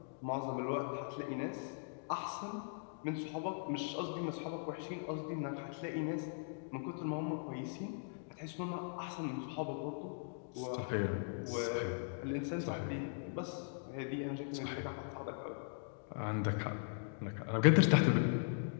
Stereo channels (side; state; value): right; silent; digital silence